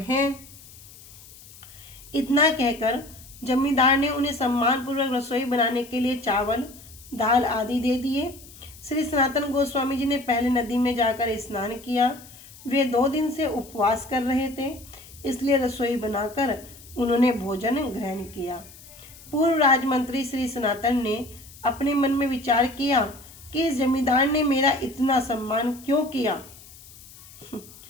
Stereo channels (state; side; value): noise; left; hiss, 20 dB below the sound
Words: इतना कहकर जमींदार ने उन्हें सम्मानपूर्वक रसोई बनाने के लिए चावल, दाल आदि दे दिए। श्री सनातन गोस्वामी जी ने पहले नदी में जाकर स्नान किया। वे 2 दिन से उपवास कर रहे थे, इसलिए रसोई बनाकर उन्होंने भोजन ग्रहण किया। पूर्व राजमंत्री श्री सनातन ने अपने मन में विचार किया कि इस जमींदार ने मेरा इतना सम्मान क्यों किया।